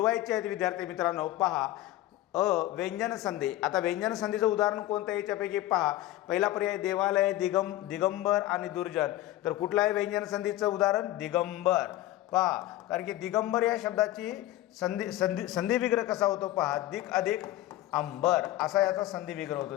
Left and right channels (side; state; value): right; quieter; 15.3 dB